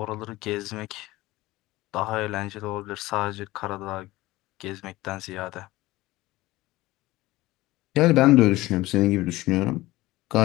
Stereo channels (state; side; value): quieter; right; 18.6 dB